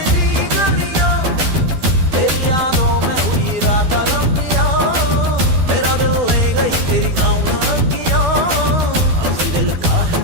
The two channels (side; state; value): left; late; 12 ms